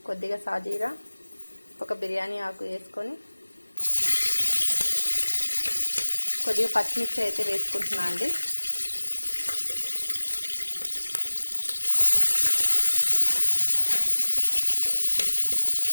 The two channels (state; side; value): inverted; both; correlation -1.00